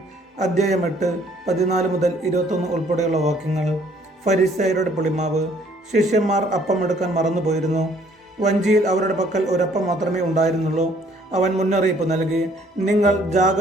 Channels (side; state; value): both; normal; correlation 0.61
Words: അധ്യായം 8 14 മുതൽ 21 ഉൾപ്പെടെയുള്ള വാക്യങ്ങൾ. ഫരിസേയരുടെ പുളിമാവ്. ശിഷ്യന്മാർ അപ്പം എടുക്കാൻ മറന്നുപോയിരുന്നു. വഞ്ചിയിൽ അവരുടെ പക്കൽ ഒരപ്പം മാത്രമേ ഉണ്ടായിരുന്നുള്ളൂ. അവൻ മുന്നറിയിപ്പ് നൽകി, നിങ്ങൾ